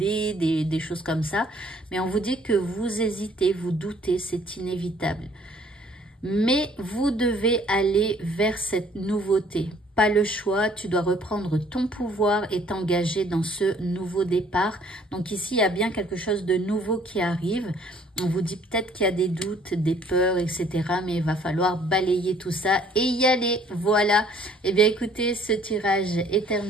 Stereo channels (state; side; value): normal; both; correlation 0.59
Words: des choses comme ça. Mais on vous dit que vous hésitez, vous doutez, c'est inévitable. Mais vous devez aller vers cette nouveauté. Pas le choix, tu dois reprendre ton pouvoir et t'engager dans ce nouveau départ. Donc ici, il y a bien quelque chose de nouveau qui arrive. On vous dit peut-être qu'il y a des doutes, des peurs, etc. Mais il va falloir balayer tout ça et y aller. Voilà. Eh bien, écoutez, ce tirage est